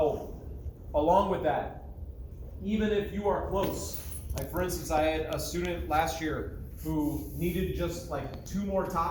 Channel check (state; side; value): identical; both; correlation 1.00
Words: along with that, even if you are close, like for instance, I had a student last year who needed just like 2 more